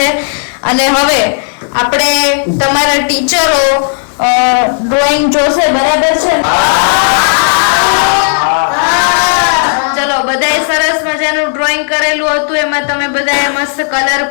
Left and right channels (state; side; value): silent; right; digital silence